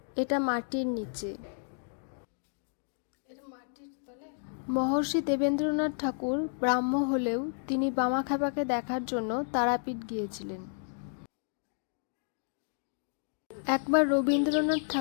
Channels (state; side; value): silent; right; digital silence